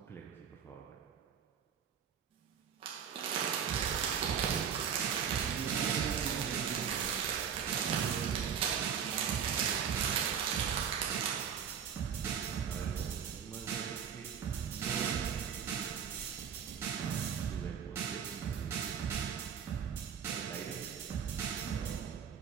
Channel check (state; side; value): quieter; left; 7.8 dB